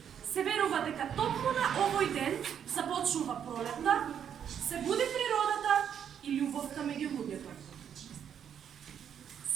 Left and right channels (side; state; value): left; quieter; 8.6 dB